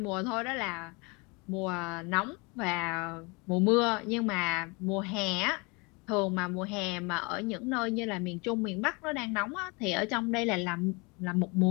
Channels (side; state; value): right; quieter; 28.6 dB